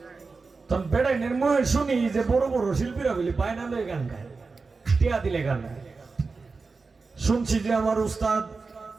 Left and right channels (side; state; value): left; quieter; 4.3 dB